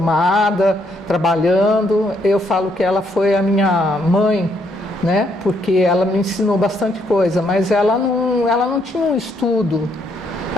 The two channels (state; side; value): normal; both; correlation 0.73